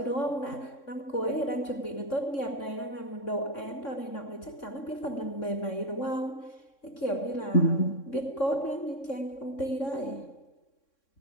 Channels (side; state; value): right; late; 3.6 ms